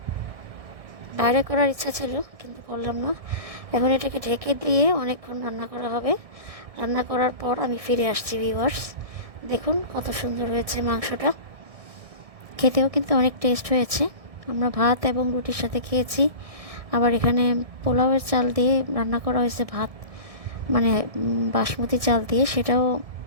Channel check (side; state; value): left; late; 1.6 ms